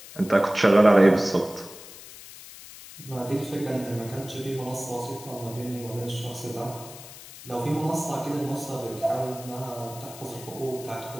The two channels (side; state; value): left; noise; hiss, 16 dB below the sound